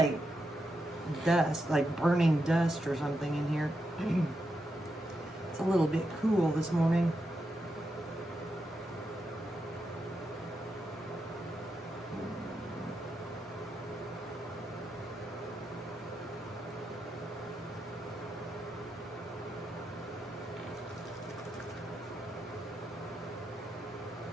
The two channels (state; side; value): normal; both; correlation 0.85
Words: dust, like burning dust or something in here. It's a little bit cool this morning.